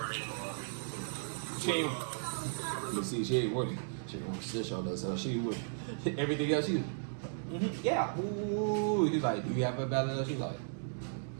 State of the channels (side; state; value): left; silent; digital silence